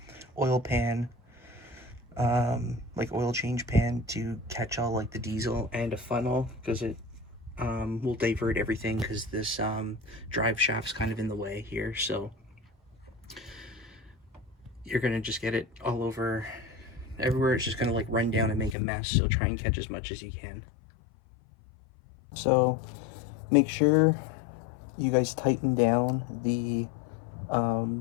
oil pan, like oil change pan to catch all like the diesel, and a funnel, because it will divert everything, because this drive shaft's kind of in the way here. So you're gonna just get it all over everywhere. It's just gonna like run down and make a mess, so try and catch as much as you can. So make sure you guys tighten down the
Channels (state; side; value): drops out; right; at 18.8 s